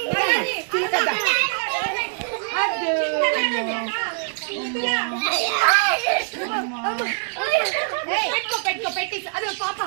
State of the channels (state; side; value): silent; left; digital silence